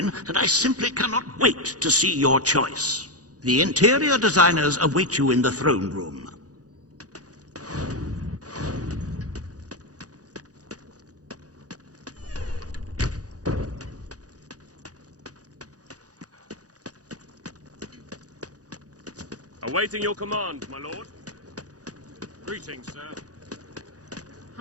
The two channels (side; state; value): left; late; 0.67 ms